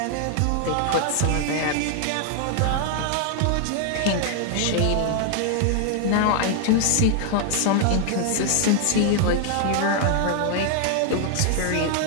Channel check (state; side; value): different; both; correlation 0.00